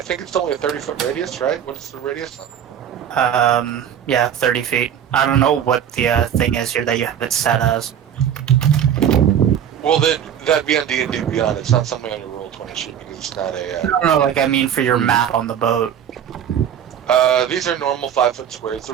it's only a 30-foot radius, right? What is the radius? Yeah, 30 feet. I don't know what the thing is here that you have it set as. Well, then that'd be on D&D Beyond. It's not something on your Roll20 sheet because it's not a. No, like I mean for your map on the boat. These are normal 5-foot squares. The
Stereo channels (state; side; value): quieter; left; 9.2 dB